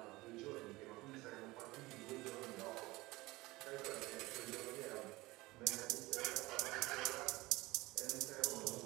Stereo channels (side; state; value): left; quieter; 20.6 dB